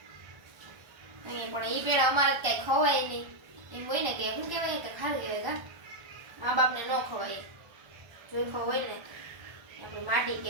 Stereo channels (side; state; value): left; late; 1.3 ms